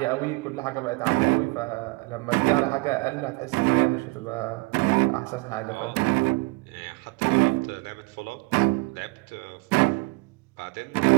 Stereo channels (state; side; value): quieter; left; 25.9 dB